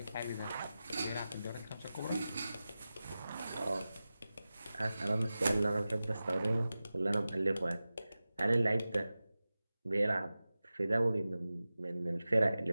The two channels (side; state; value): both; inverted; correlation -0.95